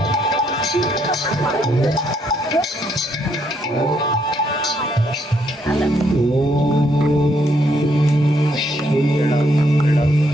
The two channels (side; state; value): both; normal; correlation 0.73